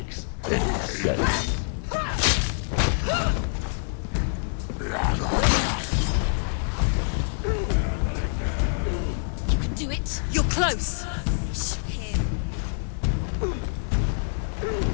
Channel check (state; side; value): silent; right; digital silence